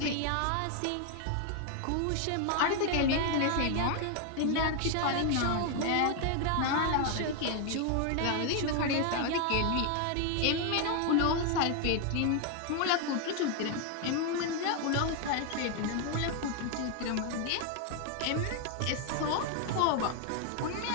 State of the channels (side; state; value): both; different; correlation 0.01